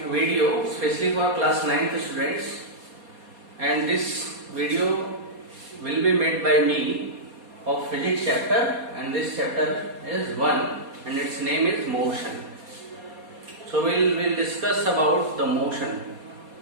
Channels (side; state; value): left; late; 4.2 ms